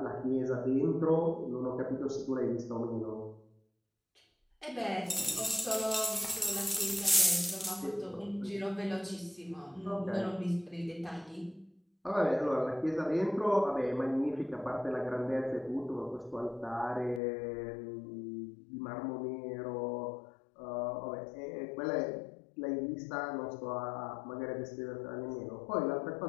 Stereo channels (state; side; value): drops out; right; at 17.2 s